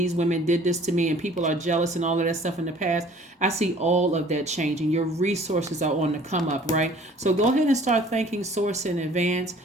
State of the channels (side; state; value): both; normal; correlation 0.52